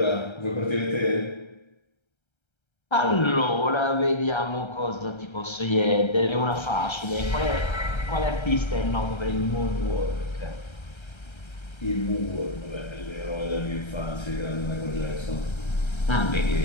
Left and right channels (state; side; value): late; right; 1.3 ms